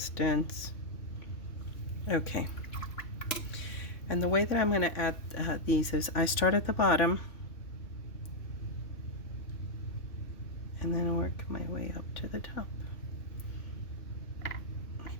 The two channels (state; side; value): late; right; 3.5 ms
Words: Okay. And the way that I'm going to add these is I start at the bottom and then work my way up to the top.